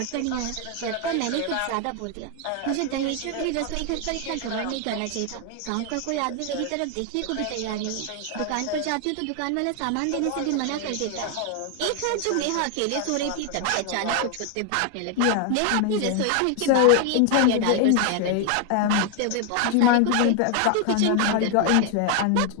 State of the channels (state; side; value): different; both; correlation 0.00